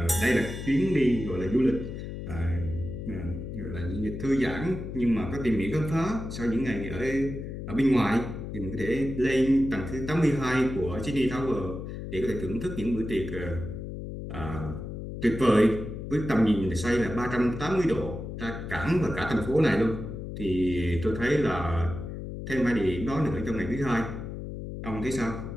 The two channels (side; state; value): left; noise; hum, 8 dB below the sound